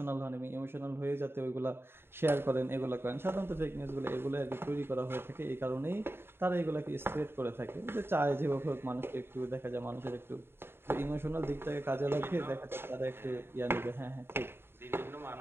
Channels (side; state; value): left; late; 0.11 ms